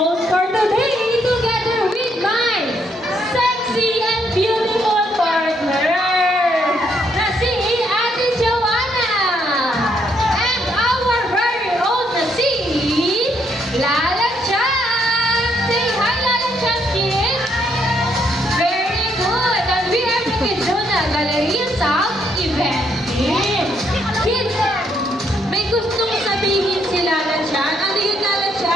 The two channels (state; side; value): normal; both; correlation 0.73